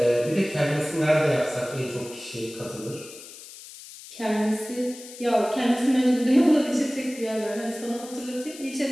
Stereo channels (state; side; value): noise; left; hiss, 16 dB below the sound